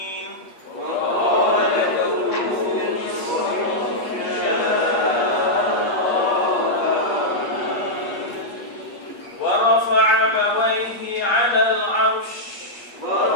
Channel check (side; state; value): right; late; 8.4 ms